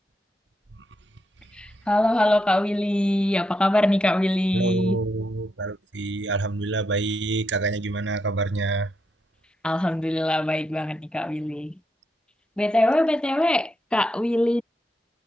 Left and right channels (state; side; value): normal; both; correlation 0.81